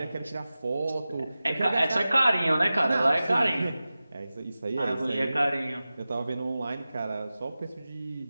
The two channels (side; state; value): both; inverted; correlation -0.96